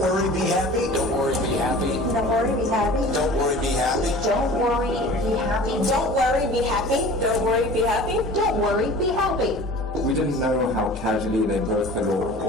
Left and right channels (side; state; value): both; normal; correlation 0.42